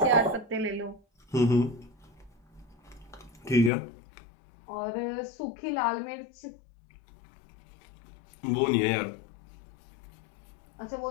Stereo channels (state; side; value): drops out; right; at 3.7 s